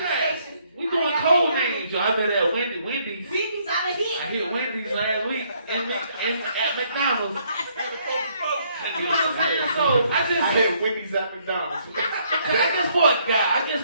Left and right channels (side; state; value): both; inverted; correlation -0.68